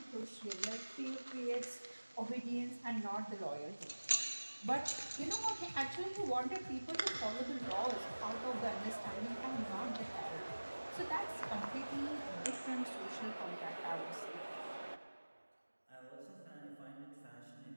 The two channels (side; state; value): both; inverted; correlation -1.00